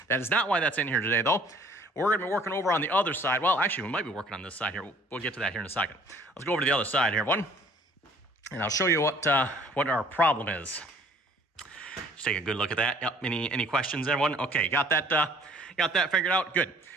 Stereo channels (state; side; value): normal; both; correlation 0.55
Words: That is not why that's in here today, though. We're going to be working over on the other side. Well, actually, we might be working on this side here. We'll get to that here in a second. Let's go over to the other side here, everyone, and I'll show you what our problem is. Just take a good look at that. Yep. Any questions, everyone? Okay, got that figured out? Good.